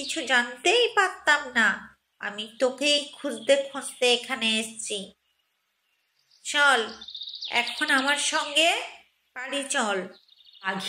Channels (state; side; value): identical; both; correlation 1.00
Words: জানতেই পারতাম না। আমি তোকেই খুঁজতে খুঁজতে এখানে এসেছি। চল এখন আমার সঙ্গে বাড়ি চল।